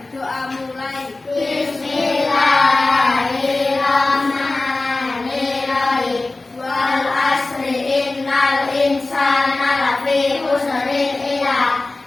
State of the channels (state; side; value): quieter; right; 3.2 dB